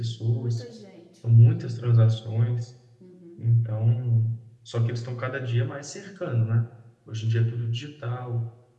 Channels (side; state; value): both; identical; correlation 1.00